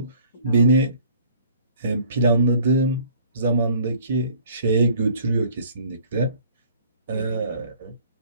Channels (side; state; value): both; inverted; correlation -0.54